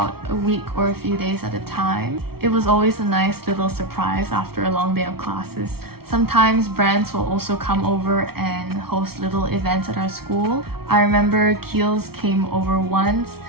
a week or a few days at a time. It was always a nice little surprise after a long day of classes. Sometimes brands will also come over and host little events at our school. I remember Kiehl's came over once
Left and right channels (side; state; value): left; late; 0.95 ms